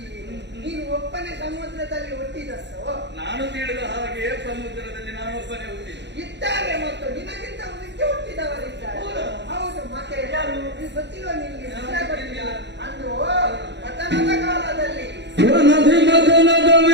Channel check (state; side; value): late; left; 0.51 ms